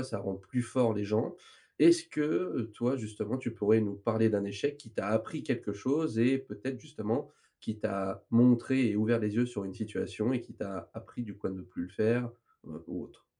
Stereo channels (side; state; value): both; identical; correlation 1.00